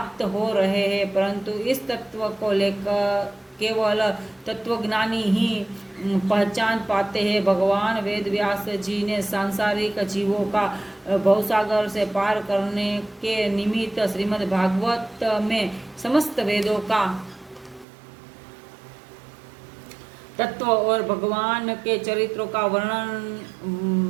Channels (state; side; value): drops out; left; at 17.9 s